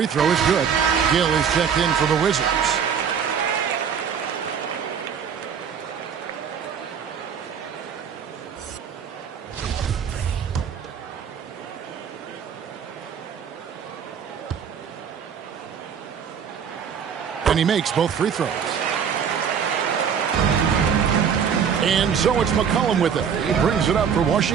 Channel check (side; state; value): left; quieter; 7.3 dB